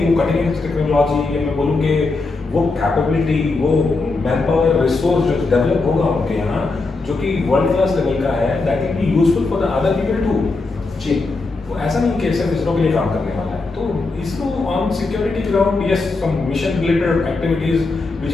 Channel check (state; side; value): quieter; right; 3.6 dB